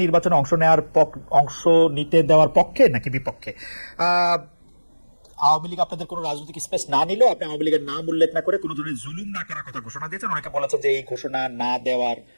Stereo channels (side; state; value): both; inverted; correlation -1.00